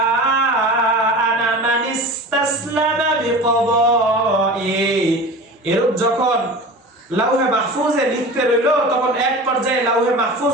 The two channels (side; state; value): both; normal; correlation 0.34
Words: আনা মানিস্তাসলামা বিকদাই। এরূপ যখন লাউহে মাহফুজে লিখতে রইলো, তখন এক পর্যায়ে লাউহে